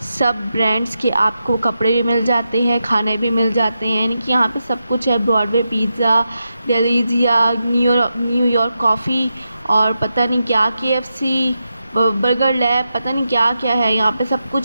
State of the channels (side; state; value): both; inverted; correlation -0.88